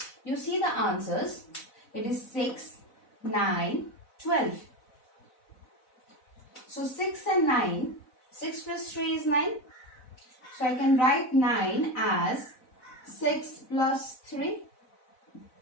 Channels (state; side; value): late; right; 4.0 ms